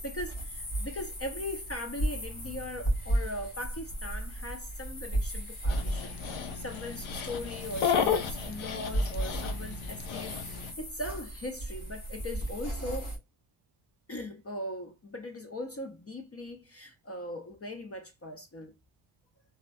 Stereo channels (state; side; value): normal; both; correlation 0.42